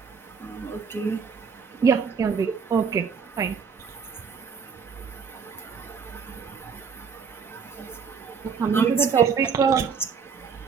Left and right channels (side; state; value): left; quieter; 6.0 dB